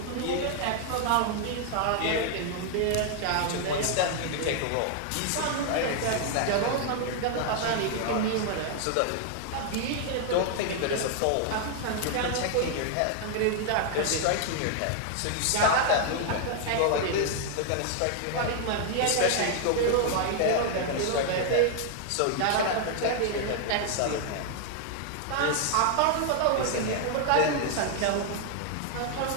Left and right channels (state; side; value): different; both; correlation 0.00